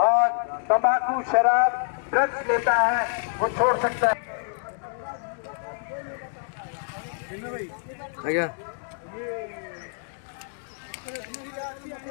तंबाकू शराब ड्रग्स लेता है वो छोड़ सकता है। ଆଜ୍ଞା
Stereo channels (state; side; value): silent; right; digital silence